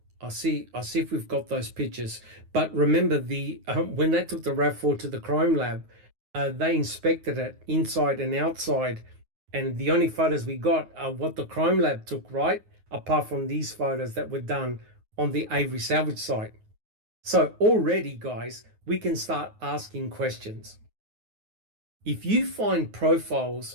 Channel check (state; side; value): late; left; 9.4 ms